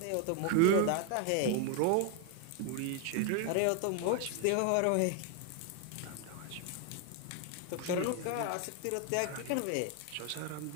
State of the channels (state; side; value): different; both; correlation 0.01